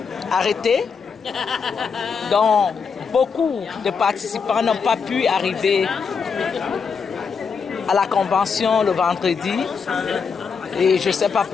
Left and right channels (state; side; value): quieter; right; 5.8 dB